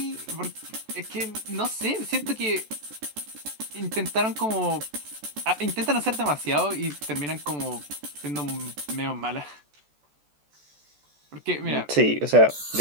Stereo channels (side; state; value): left; late; 14 ms